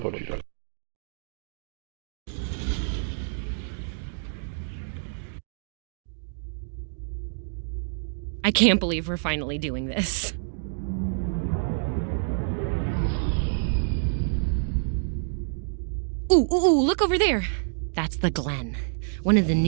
wieder. I can't believe we're finally doing this. Ooh, look over there. That's the Glen, one of the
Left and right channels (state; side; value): silent; left; digital silence